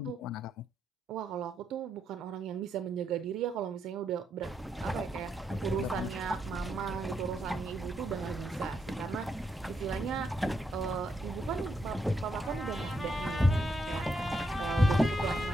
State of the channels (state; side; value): normal; both; correlation 0.79